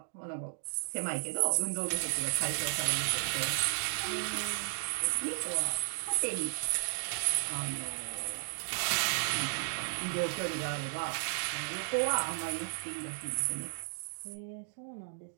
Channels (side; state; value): left; silent; digital silence